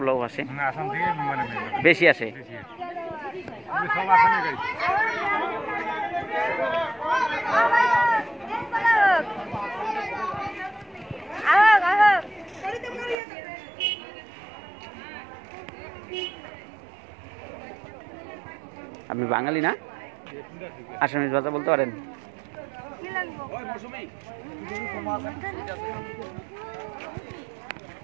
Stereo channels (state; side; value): drops out; left; at 13.2 s